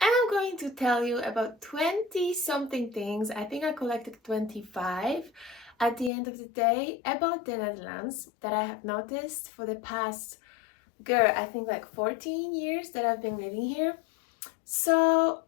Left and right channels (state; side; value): drops out; right; at 6.1 s